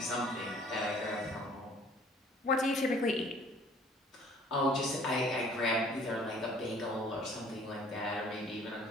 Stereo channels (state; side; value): normal; both; correlation 0.55